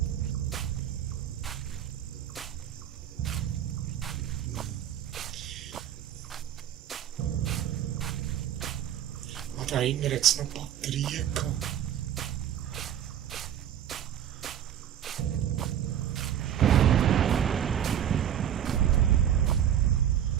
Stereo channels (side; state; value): left; quieter; 10.1 dB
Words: Und da hinten hat es noch Batterien gehabt.